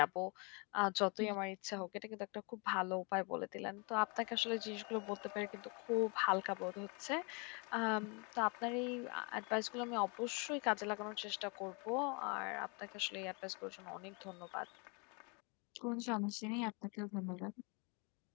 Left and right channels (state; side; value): quieter; right; 32.3 dB